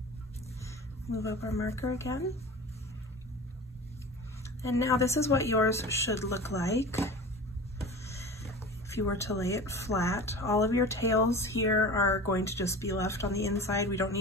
Move up our marker again. And now this is what yours should look like if you were to lay it flat. All of your tails here are going to just be left on the inside. We don't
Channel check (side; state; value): both; normal; correlation 0.35